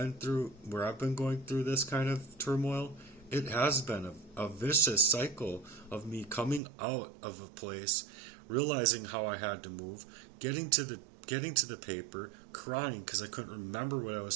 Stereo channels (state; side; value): drops out; left; at 6.6 s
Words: going through this kind of turmoil, it has been a vicious cycle of me coming out of a place, realizing how I had to move, getting to the paper, crying because I couldn't remember what I